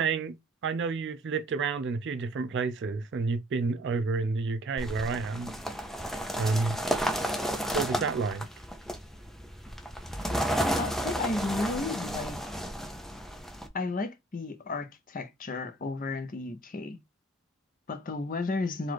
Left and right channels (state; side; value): normal; both; correlation 0.59